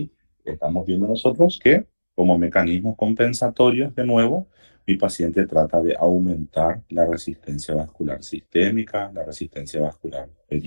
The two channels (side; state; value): both; inverted; correlation -1.00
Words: estamos viendo nosotros que, como mecanismos compensatorios, de nuevo, mi paciente trata de aumentar la resistencia vascular sistémica, la resistencia vascular